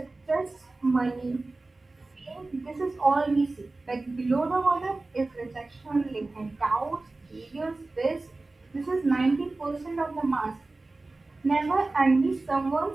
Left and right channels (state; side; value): quieter; left; 3.2 dB